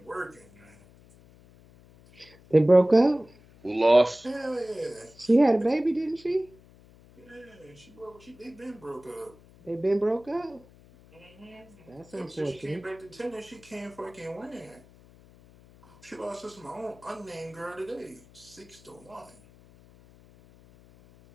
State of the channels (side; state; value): left; noise; hum, 25 dB below the sound